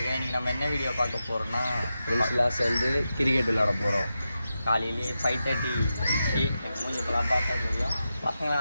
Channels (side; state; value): both; inverted; correlation -0.90